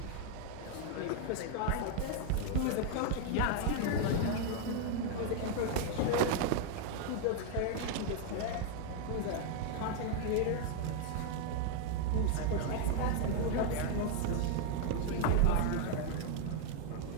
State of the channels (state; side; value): different; both; correlation 0.00